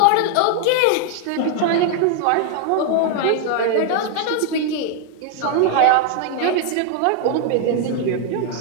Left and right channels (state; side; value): different; both; correlation 0.00